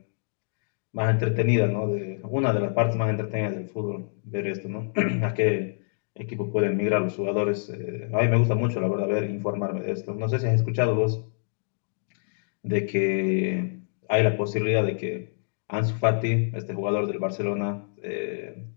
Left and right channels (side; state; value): right; silent; digital silence